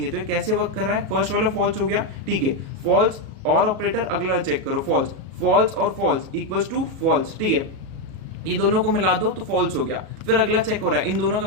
तो ये कैसे वर्क कर रहा है, फर्स्ट वाला फॉल्स हो गया, ठीक है, फॉल्स और ऑपरेटर, अगला चेक करो फॉल्स और फॉल्स इक्वल्स टू फॉल्स, ठीक है, ये दोनों को मिला दो तो फॉल्स हो गया। फिर अगला चेक हो रहा है इन दोनों का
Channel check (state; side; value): late; left; 37 ms